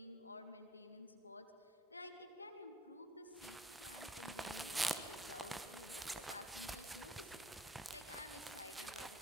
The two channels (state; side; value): normal; both; correlation 0.58